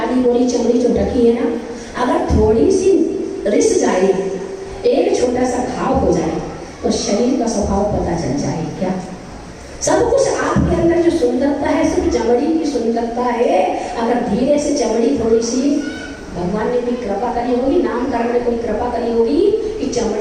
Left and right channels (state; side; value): identical; both; correlation 1.00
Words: गोरी चमड़ी जो ढकी है ना, अगर थोड़ी सी रिस जाए, एक छोटा सा घाव हो जाए तो शरीर का स्वभाव पता चल जाए। क्या सब कुछ आपके अंदर जो सुंदरता है सिर्फ चमड़ी की सुंदरता है। अगर धीरे से चमड़ी थोड़ी सी भगवान ने भी कृपा करी होगी, नामकरण में कोई कृपा करी होगी कि